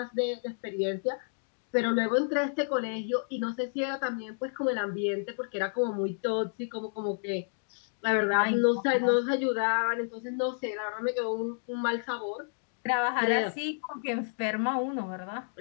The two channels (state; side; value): silent; right; digital silence